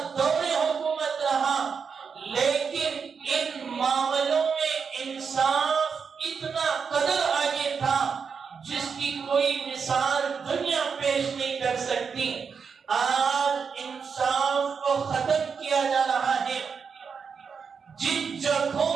دور حکومت رہا، لیکن ان معاملوں میں انصاف اتنا قدر آگے تھا جس کی کوئی مثال دنیا پیش نہیں کر سکتی۔ آج انصاف کو ختم کیا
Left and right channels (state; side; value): quieter; left; 6.0 dB